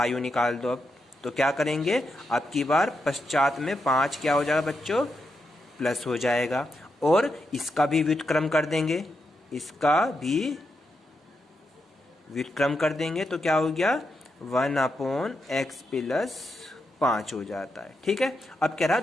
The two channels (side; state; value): both; normal; correlation 0.84